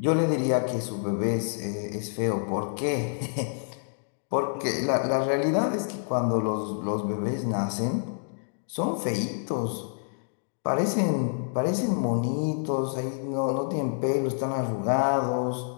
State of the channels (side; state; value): right; silent; digital silence